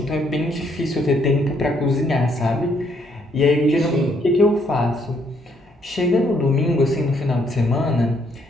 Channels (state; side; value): normal; both; correlation 0.70